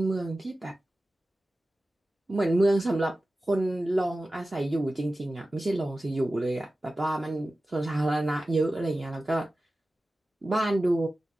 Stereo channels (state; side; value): normal; both; correlation 0.95